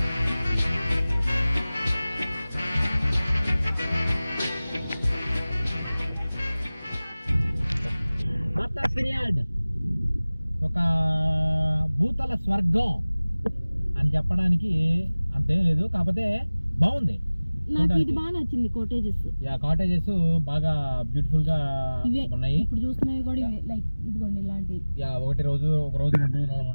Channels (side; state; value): both; inverted; correlation -0.99